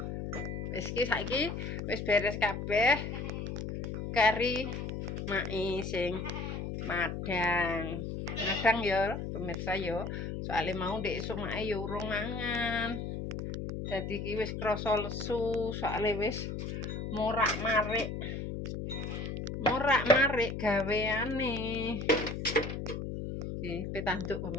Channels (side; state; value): left; noise; hum, 5 dB below the sound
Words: Wis iki saiki wis beres kabeh. Kari mae sing madang. Madang ya pemirsa ya. Soale mau ndek esuk mae ya urung mangan. Dadi iki wis krasa lesu, soale wis morak-marik. Morak-marik gaweane. Iki petanduk